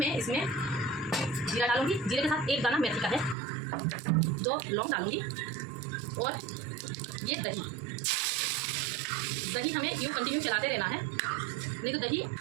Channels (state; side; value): drops out; left; at 3.4 s